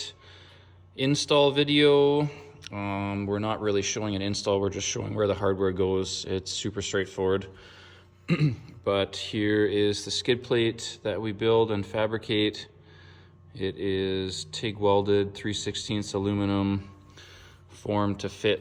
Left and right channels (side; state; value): both; identical; correlation 1.00